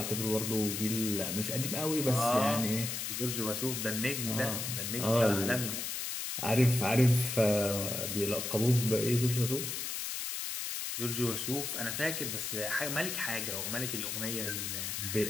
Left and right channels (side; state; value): left; noise; hiss, 3 dB below the sound